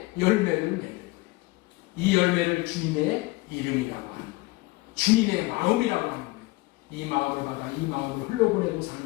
열매를 맺는 거예요. 이 열매를 주님의 이름이라고 하는 거예요. 주님의 마음이라고 하는 거예요. 이 마음을 받아 이 마음을 흘러보내고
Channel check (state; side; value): quieter; right; 22.3 dB